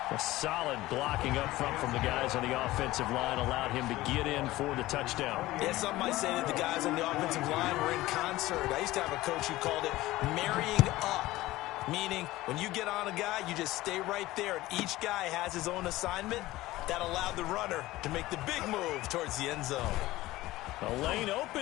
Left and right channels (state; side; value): quieter; right; 17.5 dB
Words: A solid blocking up front from the guys on the offensive line allowed him to get in for the touchdown. Yeah, some might say that the guys on the offensive line were in concert. I used to have a coach who called it marrying up, meaning when you get on a guy, you just stay right there, and each guy has his own assignment. That allowed the runner to make the big move towards the end zone. The lane